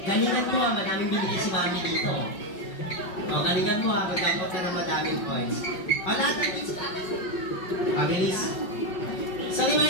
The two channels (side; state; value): right; late; 5.4 ms